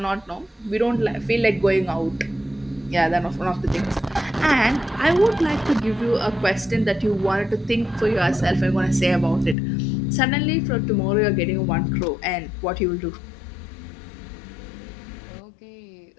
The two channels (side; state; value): right; drops out; at 9.6 s